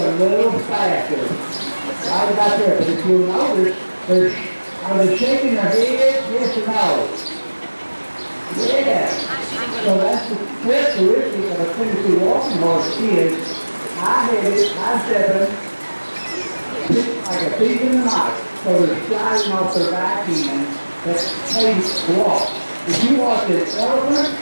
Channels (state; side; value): inverted; both; correlation -1.00